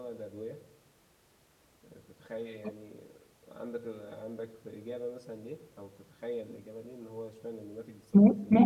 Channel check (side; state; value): both; identical; correlation 1.00